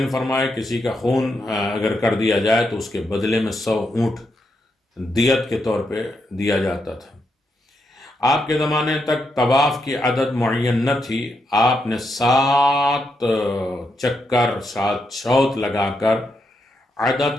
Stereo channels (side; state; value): both; normal; correlation 0.82